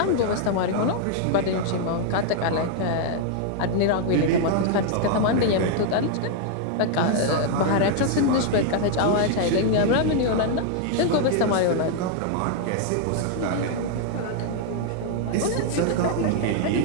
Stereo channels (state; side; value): different; both; correlation 0.00